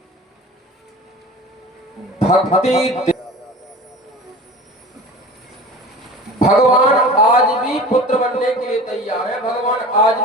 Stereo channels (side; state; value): both; normal; correlation 0.38